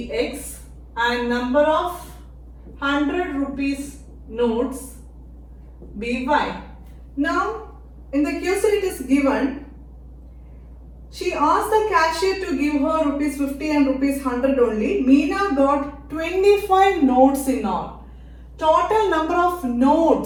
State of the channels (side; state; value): both; identical; correlation 1.00